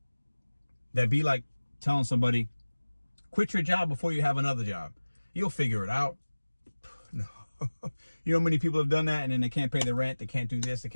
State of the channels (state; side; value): inverted; both; correlation -1.00